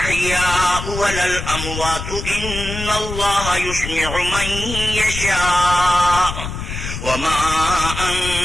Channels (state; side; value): noise; left; rumble, 7 dB below the sound